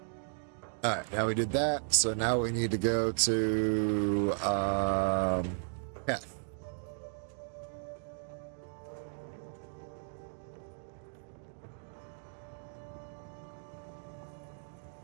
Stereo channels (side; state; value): left; silent; digital silence